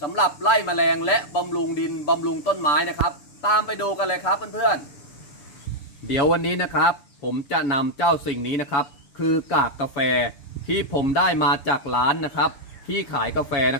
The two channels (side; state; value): right; late; 6.9 ms